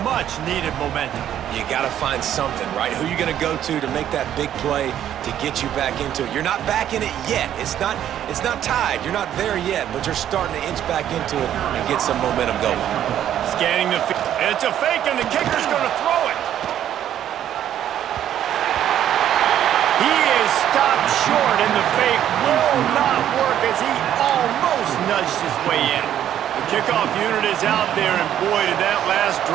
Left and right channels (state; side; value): quieter; left; 10.8 dB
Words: much-needed momentum. You got to find something, right? Who are you going to go to make that big play to get you back into it? You're not back in it yet. It's not tied. You're not there yet, but you're starting to inch back into it and get some momentum going. Scanning the field. It's a fake, and the kicker's going to throw it. He is stopped short, and the fake will not work as he almost nudged his way in. The kickoff unit is out there, and boy, did that last